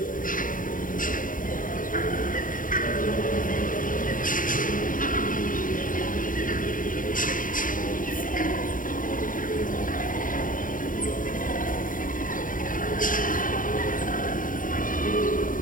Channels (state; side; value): late; right; 0.39 ms